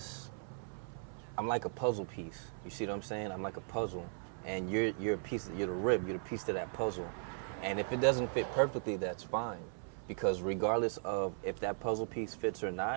I'm like a puzzle piece. You see what I'm saying? I'm like a puzzle, and you're a piece. You're the rib. You're the piece to that puzzle. And if it doesn't fit perfectly, that's fine. Because regardless of if that puzzle piece fits or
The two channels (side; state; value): left; silent; 53 dB below the other